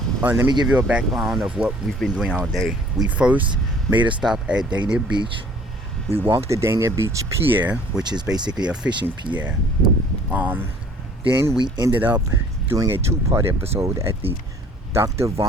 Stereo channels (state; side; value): normal; both; correlation 0.54